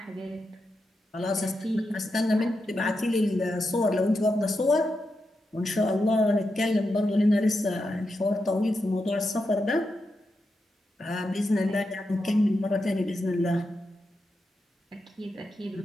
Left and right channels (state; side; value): normal; both; correlation 0.87